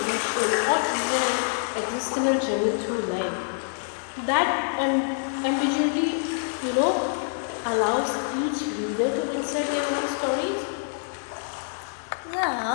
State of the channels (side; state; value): right; silent; digital silence